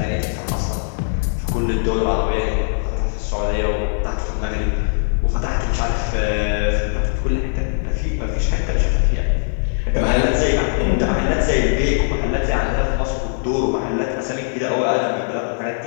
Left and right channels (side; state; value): right; silent; digital silence